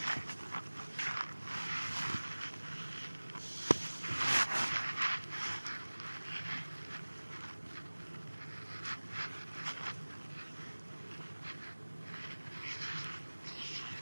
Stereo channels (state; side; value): inverted; both; correlation -1.00